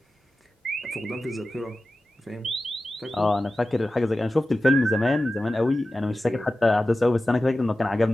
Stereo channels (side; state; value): both; normal; correlation 0.95